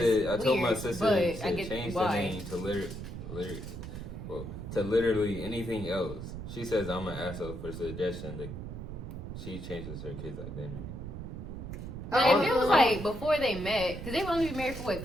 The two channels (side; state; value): right; noise; rumble, 8 dB below the sound